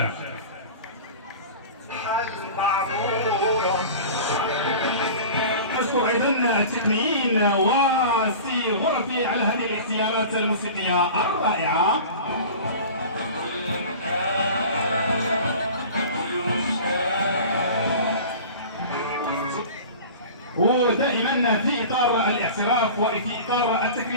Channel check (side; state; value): both; inverted; correlation -0.37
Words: نشكر ايضا التقنيين وسي غرفي على هذه الاختيارات الموسيقيه الرائعه. ودائما في اطار الاعتراف وفي اطار